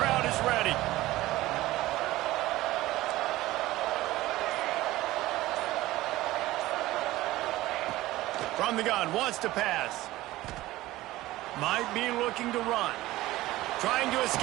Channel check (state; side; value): quieter; left; 17.2 dB